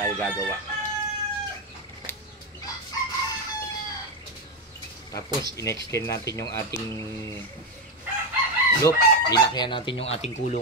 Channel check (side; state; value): both; normal; correlation 0.10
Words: gagawa. Tapos, in-extend natin yung ating loop. Linakyan natin yung ating